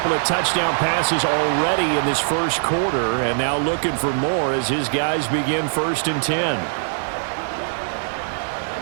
of touchdown passes already in this first quarter, and now looking for more as his guys begin 1st and 10.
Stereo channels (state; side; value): silent; left; digital silence